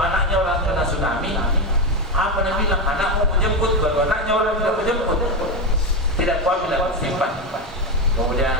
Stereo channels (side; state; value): both; normal; correlation 0.13